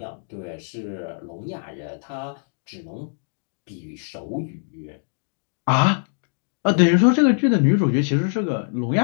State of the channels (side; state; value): right; silent; digital silence